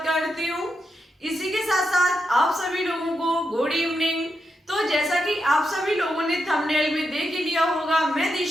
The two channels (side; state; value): both; normal; correlation 0.85